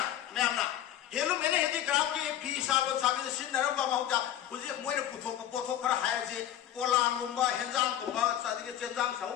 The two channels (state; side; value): quieter; right; 11.4 dB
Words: मैं अपना हेलुम मैंने हेदी क्राफ्ट की फी साबन साबन सिन नरम बा माउटा हुजे मोइने पुथो पोथो खरा हाय जे कोलांग गुम्बा हेंजांग गुम्बा सादि के चेंजांग